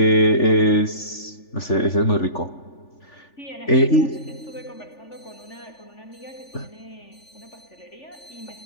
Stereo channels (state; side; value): late; right; 3.4 ms